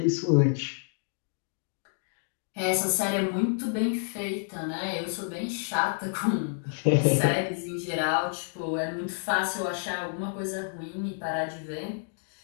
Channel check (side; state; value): right; silent; digital silence